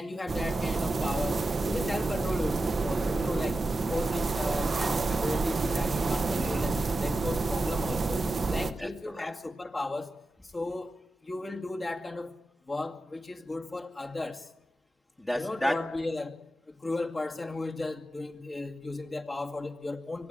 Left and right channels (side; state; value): both; normal; correlation 0.91